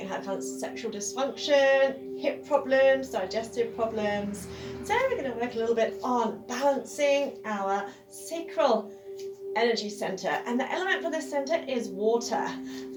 have kind of sexual dysfunction, hip problems, digestive problems. So we're going to work a little bit on balancing our sacral energy center, and the element for this center is water.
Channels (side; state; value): both; identical; correlation 1.00